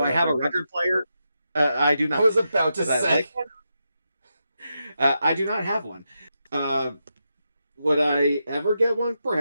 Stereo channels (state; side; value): inverted; both; correlation -0.86